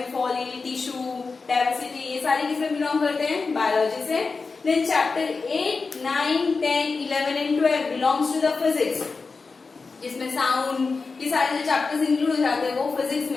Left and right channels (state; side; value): quieter; right; 4.4 dB